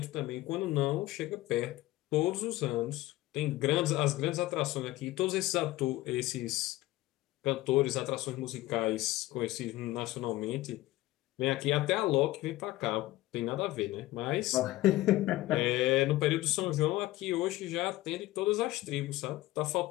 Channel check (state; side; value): quieter; right; 17.3 dB